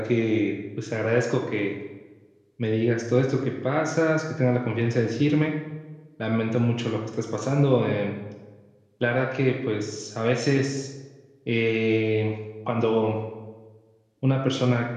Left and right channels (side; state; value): both; identical; correlation 1.00